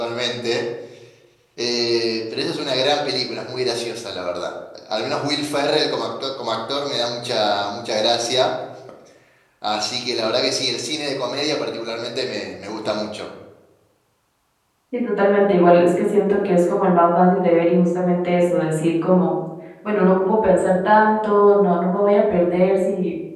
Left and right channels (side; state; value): both; identical; correlation 1.00